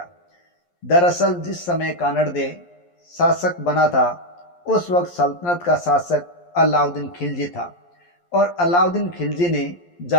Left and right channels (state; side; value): late; right; 11 ms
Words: दरअसल जिस समय कानड़ देव शासक बना था उस वक्त सल्तनत का शासक अलाउद्दीन खिलजी था और अलाउद्दीन खिलजी ने